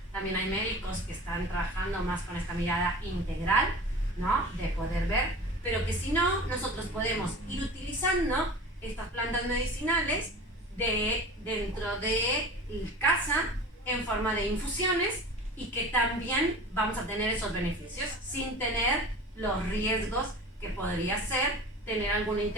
También hay médicos que están trabajando más con esta mirada integral, ¿no? De poder ver, pero que si no, nosotros podemos ir utilizando estas plantas medicinales dentro de casa en forma de infusiones y que también vamos a tener esos beneficios sin tener los riesgos que podría ser tener alguna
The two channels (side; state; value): both; normal; correlation 0.37